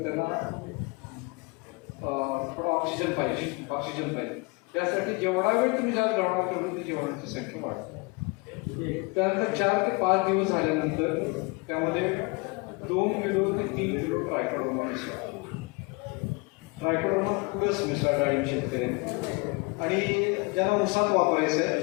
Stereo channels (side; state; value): right; quieter; 28.5 dB